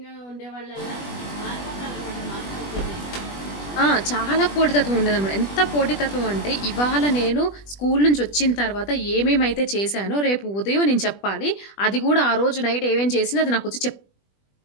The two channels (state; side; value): late; right; 20 ms